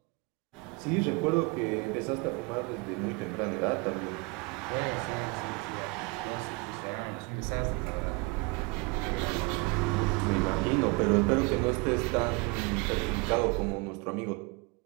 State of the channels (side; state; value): left; quieter; 27.9 dB